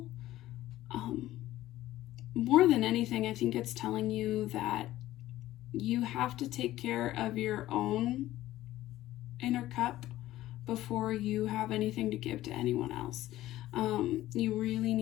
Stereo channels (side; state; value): right; quieter; 15.1 dB